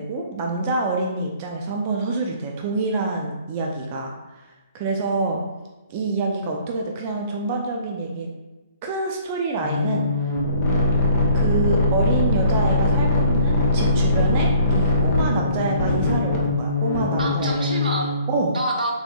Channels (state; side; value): inverted; both; correlation -0.55